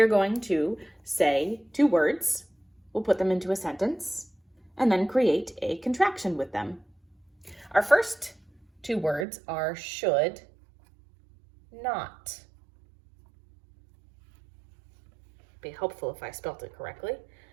going to say two words, we'll put them into a sentence, and then create a contraction with them. Our first two words are should not. Be helpful if I spelt it correctly.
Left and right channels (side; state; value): left; drops out; at 9.2 s